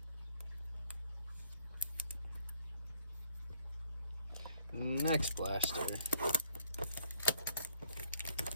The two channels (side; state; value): both; inverted; correlation -0.65